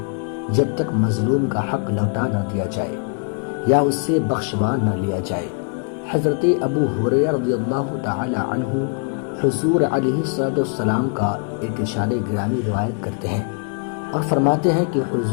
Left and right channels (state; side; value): quieter; right; 39.9 dB